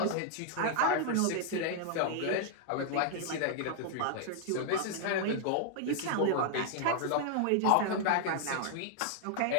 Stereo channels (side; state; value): both; different; correlation 0.00